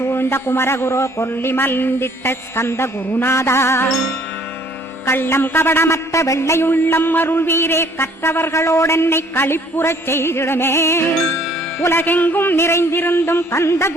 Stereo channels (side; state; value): both; normal; correlation 0.59